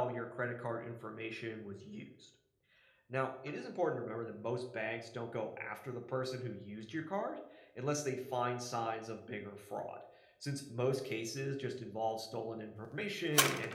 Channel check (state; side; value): identical; both; correlation 1.00